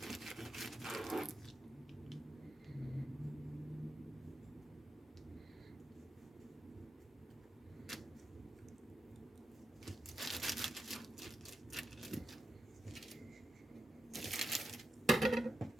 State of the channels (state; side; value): normal; both; correlation 0.87